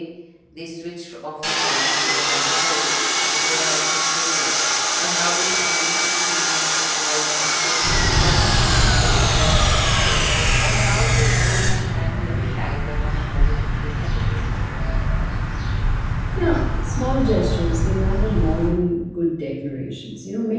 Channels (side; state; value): both; identical; correlation 1.00